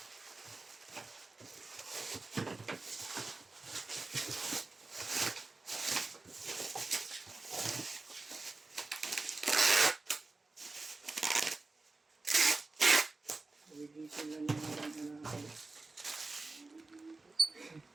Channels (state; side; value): quieter; left; 3.5 dB